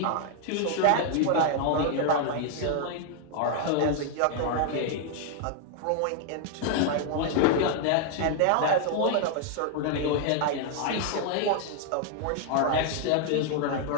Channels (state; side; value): different; both; correlation 0.00